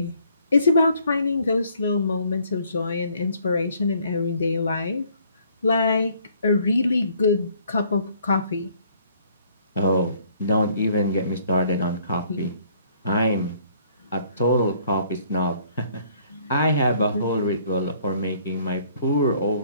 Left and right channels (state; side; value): inverted; both; correlation -0.62